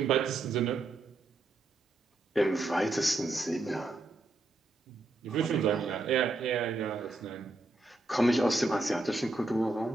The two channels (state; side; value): quieter; left; 3.1 dB